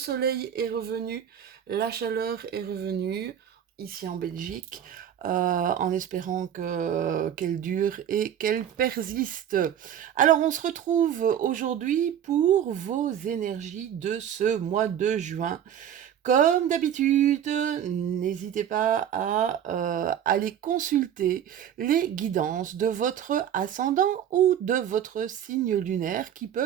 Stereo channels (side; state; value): left; quieter; 9.6 dB